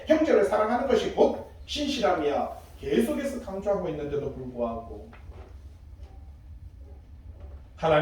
형제를 사랑하는 것이 곧 신실함이야. 계속해서 강조하고 있는데도 불구하고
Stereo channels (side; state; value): both; identical; correlation 1.00